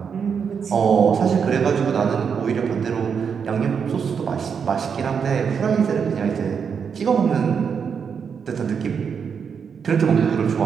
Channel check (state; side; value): quieter; left; 6.6 dB